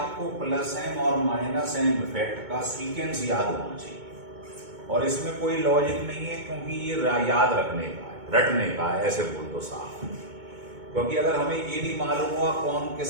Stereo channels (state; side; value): late; left; 2.2 ms